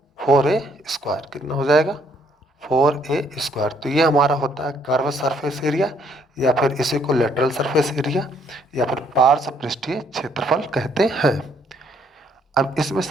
4a स्क्वायर, कितना हो जाएगा 4a²। तो ये हमारा होता है कर्व सरफेस एरिया, या फिर इसी को लेटरल सरफेस एरिया, या फिर पार्श्व पृष्ठीय क्षेत्रफल कहते हैं। अब इसमें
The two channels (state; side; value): normal; both; correlation 0.67